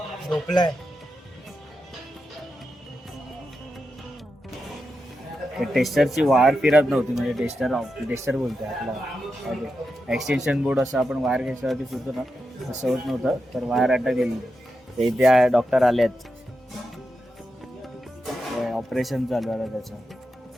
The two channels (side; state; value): both; normal; correlation 0.88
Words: झोपलाय. टेस्टरची वायर फिरत नव्हती म्हणजे टेस्टर बोलतोय आपला एक्सटेन्शन बोर्ड असं आपण वायर घ्यायच्यावरती सुचतो ना तसं होत नव्हतं तर वायर अटक गेली. ते इथे डॉक्टर आलेत ऑपरेशन चालू आहे